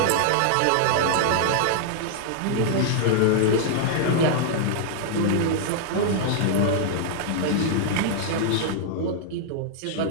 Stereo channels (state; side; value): different; both; correlation -0.01